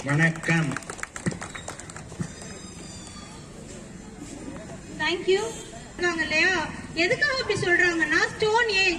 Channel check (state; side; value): identical; both; correlation 1.00